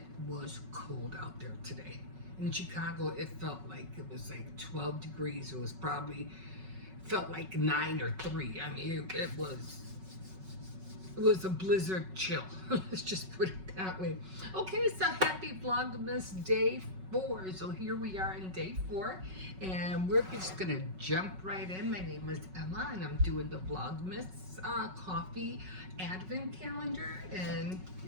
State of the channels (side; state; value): left; late; 5.4 ms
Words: was cold out there today. In Chicago, it felt like it was like 12 degrees. It was probably, felt like 9 or 3. I mean, it was a blizzard chill. Let's just put it that way. Okay, so happy Vlogmas Day 4. So here we are in Day 4, and we're just gonna jump right in. My name is Emma, and I'm doing the Vlogmas coffee advent calendar, and